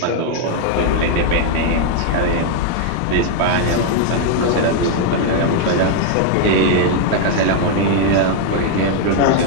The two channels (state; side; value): different; both; correlation 0.00